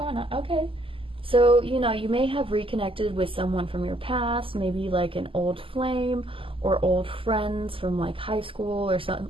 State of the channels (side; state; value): left; late; 0.26 ms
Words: on? Okay. So, you know, you may have reconnected with someone from your past, maybe like an old flame or old friends from like high school or something,